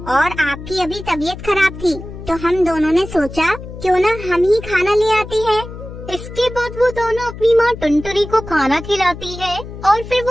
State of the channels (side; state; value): left; noise; hum, 12 dB below the sound